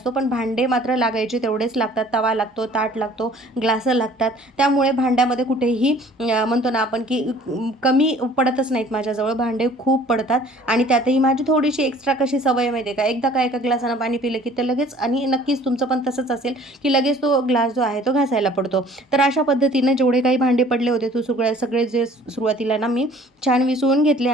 पण भांडे मात्र लागायचे तेवढेच लागतात. तवा लागतो, ताट लागतो, ग्लासं लागतात. त्यामुळे भांड्यामध्ये कुठेही म्हणतो ना आपण की कमी पडतच नाहीत. माझ्याजवळ भांडे खूप पडतात आणि त्यातही माझी थोडीशी एक्स्ट्रा कशी सवय माहिती आहे का, एकदा का एका ग्लासानं पाणी पिलं की ते लगेच आणि नक्कीच तुमचं पण तसंच असेल की लगेच तो ग्लास जो आहे तो घासायला पडतो. तर अशा पद्धतीने जेवढे काही भांडे पडले होते तो सगळे जे सुरुवातीला ना मी छान विसळून घेतले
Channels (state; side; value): normal; both; correlation 0.52